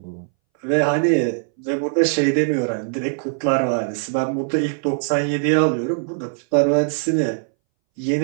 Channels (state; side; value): silent; left; 63 dB below the other